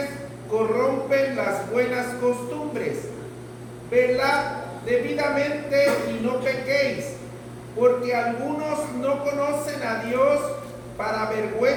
corrompen las buenas costumbres. Velad debidamente y no pequéis, porque algunos no conocen a Dios. Para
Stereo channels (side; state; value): both; identical; correlation 1.00